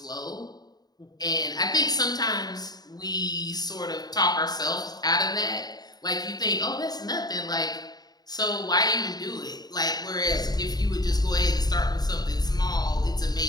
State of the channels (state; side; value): late; right; 0.19 ms